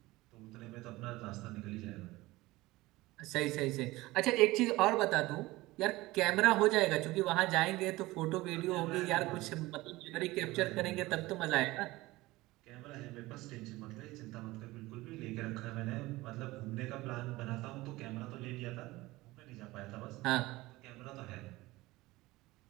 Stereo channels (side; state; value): left; quieter; 19.6 dB